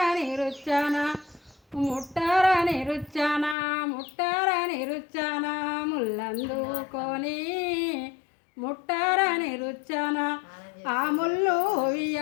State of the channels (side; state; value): right; drops out; at 3.6 s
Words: రుచ్చాన ముట్టరని రుచ్చాన ముల్లందుకొని ముట్టరని రుచ్చాన ఆ ముళ్ళు